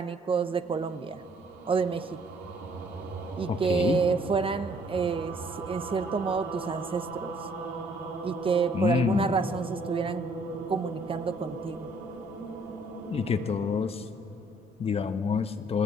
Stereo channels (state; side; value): normal; both; correlation 0.62